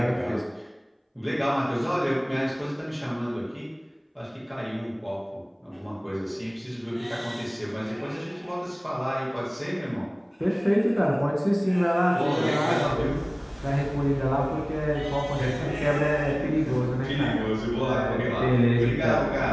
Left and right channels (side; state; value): both; identical; correlation 1.00